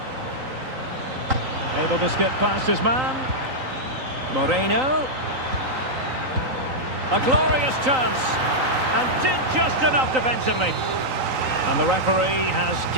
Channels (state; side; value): late; left; 3.9 ms